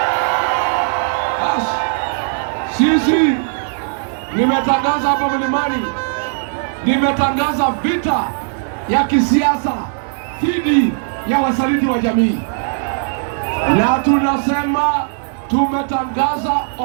Basi, sisi nimetangaza hapa mlimani, nimetangaza vita ya kisiasa dhidi ya wasaliti wa jamii. Na tunasema tumetangaza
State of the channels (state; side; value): silent; left; digital silence